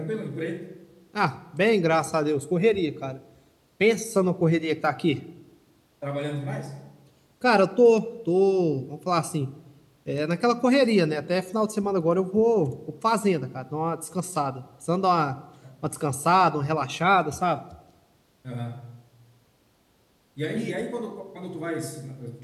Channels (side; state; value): both; identical; correlation 1.00